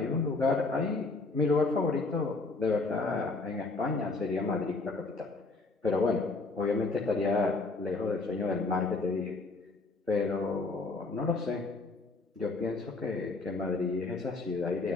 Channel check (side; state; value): right; quieter; 3.6 dB